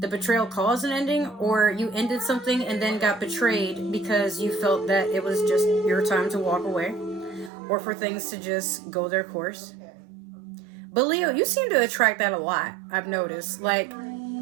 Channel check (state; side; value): drops out; left; at 7.5 s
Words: the betrayal caused an ending, or you ended something and then got betrayed because you felt that it was just your time to walk away, or for things to just go their course. But Leo, you seem to attract that a lot, I've noticed. Like,